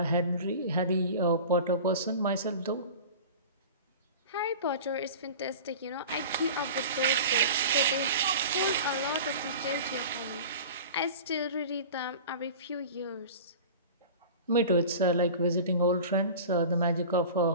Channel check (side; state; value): both; inverted; correlation -0.37